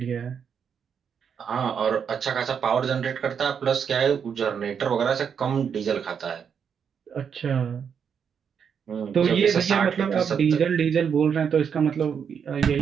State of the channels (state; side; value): quieter; left; 7.2 dB